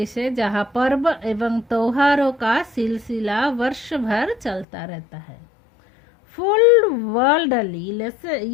है जहाँ पर्व एवं त्योहारों का सिलसिला वर्ष भर चलता रहता है. फुल वर्ल्ड ಅಲ್ಲಿ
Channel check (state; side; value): drops out; right; at 4.7 s